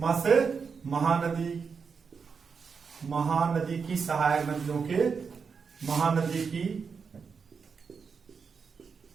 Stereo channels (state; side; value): quieter; left; 5.7 dB